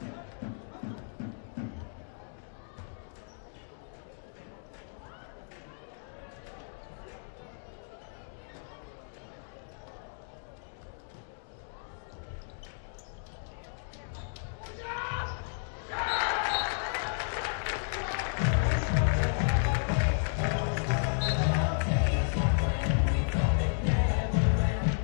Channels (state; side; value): silent; right; digital silence